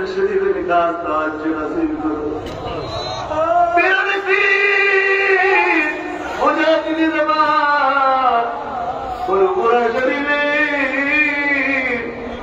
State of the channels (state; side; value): identical; both; correlation 1.00